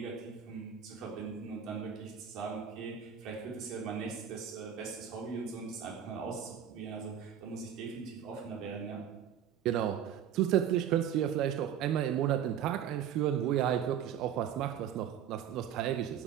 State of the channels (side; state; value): left; quieter; 9.2 dB